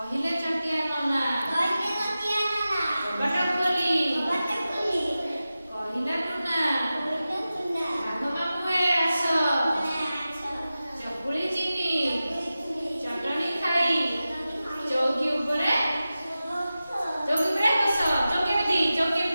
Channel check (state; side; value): inverted; both; correlation -0.94